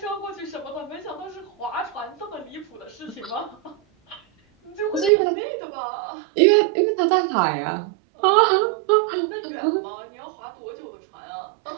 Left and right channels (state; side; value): drops out; left; at 5.1 s